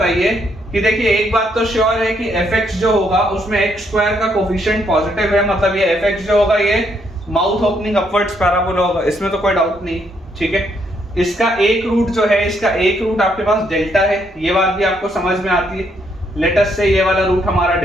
कि देखिए एक बात तो श्योर है कि fx जो होगा उसमें x स्क्वायर का कोफिशिएंट पॉजिटिव है, मतलब ये fx जो होगा ये माउथ ओपनिंग अपवर्ड्स पैराबोला होगा, इसमें तो कोई डाउट नहीं। ठीक है, इसका एक रूट जो है, इसका एक रूट आपके पास डेल्टा है, ये बात भी आपको समझ में आती है। लेट अस से ये वाला रूट हमारा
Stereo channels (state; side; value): normal; both; correlation 0.73